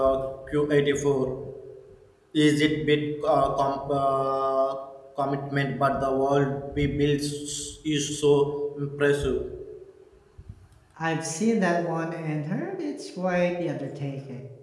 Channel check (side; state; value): both; identical; correlation 1.00